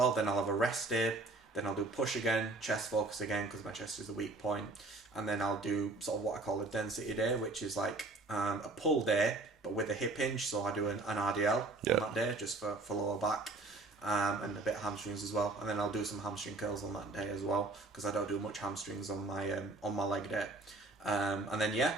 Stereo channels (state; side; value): quieter; left; 3.2 dB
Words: Then I'll have a rest day. Then I'll do push again, chest focus again because my chest is a weak point. And then I'll do sort of what I call a density day, which is like a pull day, but with a hip hinge. So I do an RDL on that day, just for lower back, and a bit of hamstrings as well. And then I'll do some hamstring curls on that day as well, because I don't do much hamstrings on my leg day. And